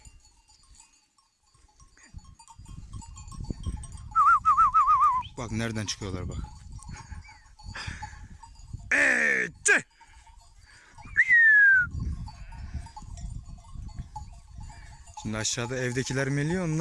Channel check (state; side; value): identical; both; correlation 1.00